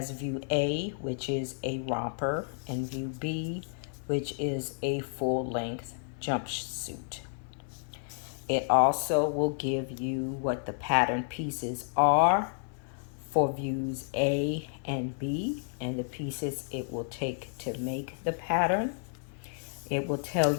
view A, which is a romper, and view B, which is a full-length jumpsuit. It also will give you what the pattern pieces are for views A and B, and the pieces it will take to make the pattern. It will tell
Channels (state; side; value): silent; right; 57 dB below the other